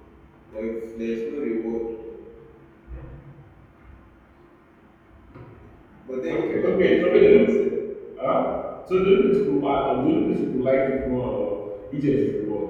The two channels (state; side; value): identical; both; correlation 1.00